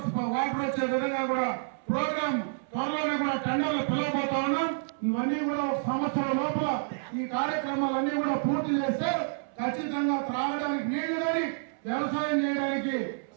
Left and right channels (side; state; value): left; silent; 59 dB below the other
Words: వాటర్ వచ్చే విధంగా కూడా ప్రోగ్రామ్ త్వరలోనే కూడా టెండర్లు పిలవబోతా ఉన్నాం. ఇవన్నీ కూడా ఒక సంవత్సరం లోపల ఈ కార్యక్రమాలన్నీ కూడా పూర్తి చేస్తే ఖచ్చితంగా త్రాగడానికి నీళ్లు కానీ వ్యవసాయం చేయడానికి